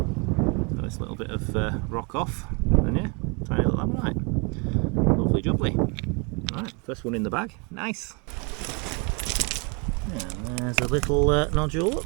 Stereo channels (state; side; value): quieter; left; 32.2 dB